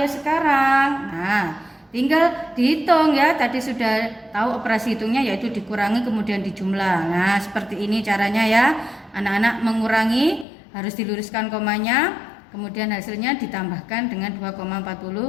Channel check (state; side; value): drops out; right; at 10.5 s